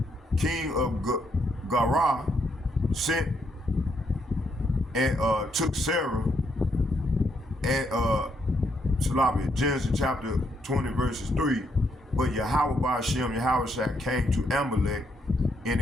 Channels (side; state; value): both; normal; correlation 0.75